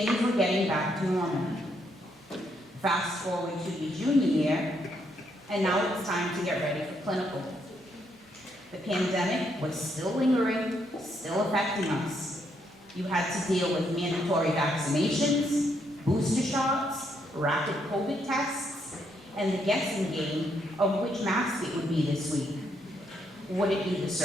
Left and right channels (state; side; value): normal; both; correlation 0.75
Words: were getting back to normal. Fast forward to your junior year, and now it's time to get ready for clinical. The pandemic was still lingering, still affecting us. You had to deal with mandatory vaccinations, booster shots, rapid COVID tests, and the guessing game of which mask it would be this week. Would it be the